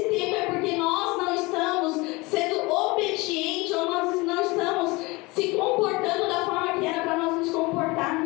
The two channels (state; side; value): quieter; right; 23.9 dB